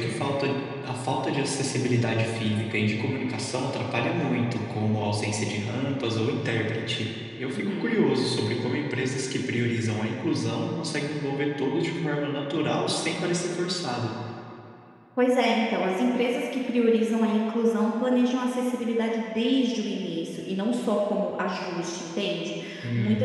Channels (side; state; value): both; identical; correlation 1.00